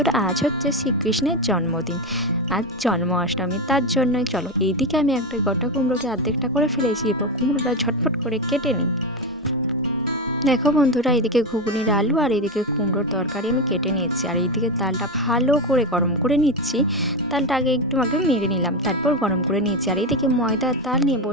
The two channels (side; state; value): both; normal; correlation 0.13